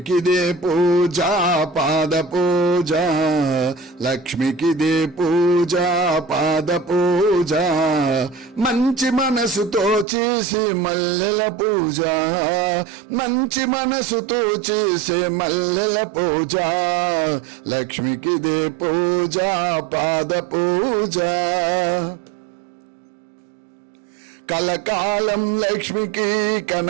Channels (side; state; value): left; drops out; at 10.1 s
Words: పూజ పాద పూజ, లక్ష్మికిదే పూజ పాద పూజ, మంచి మనసుతో చేసే మల్లెల పూజ, మంచి మనసుతో చేసే మల్లెల పూజ, లక్ష్మికిదే పూజ పాద పూజ. కలకాలం లక్ష్మికి